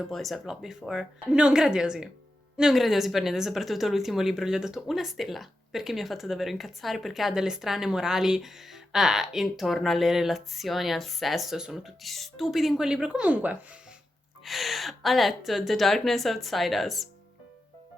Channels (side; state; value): both; normal; correlation 0.90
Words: Boys I've Loved Before. Non gradiosi per niente, soprattutto l'ultimo libro gli ho dato 1 stella, perché mi ha fatto davvero incazzare, perché ha delle strane morali intorno alle relazioni, al sesso, sono tutti stupidi in quel libro. Comunque, ho letto The Darkness Outside Us.